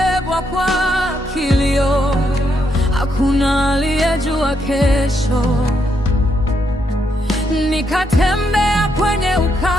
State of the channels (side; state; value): both; normal; correlation 0.78